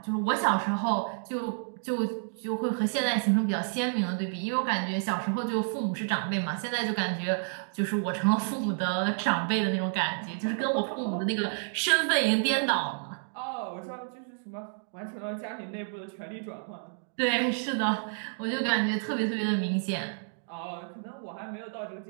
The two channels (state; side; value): silent; left; digital silence